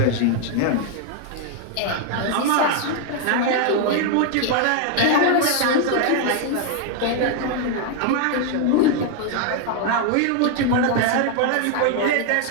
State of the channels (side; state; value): both; different; correlation 0.01